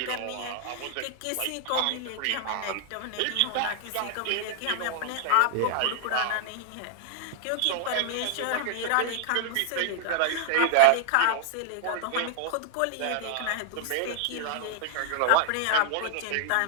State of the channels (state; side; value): different; both; correlation 0.00